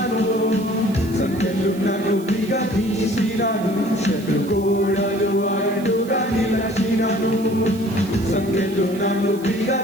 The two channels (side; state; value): right; noise; hiss, 20 dB below the sound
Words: సంఖ్యలు నన్ను విగదీసినను, శత్రుగోడలు అడ్డుగా నిలచినను. సంఖ్యలు నన్ను